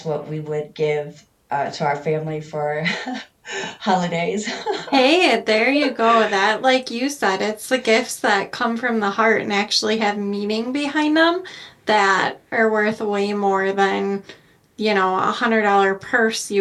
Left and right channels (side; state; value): both; identical; correlation 1.00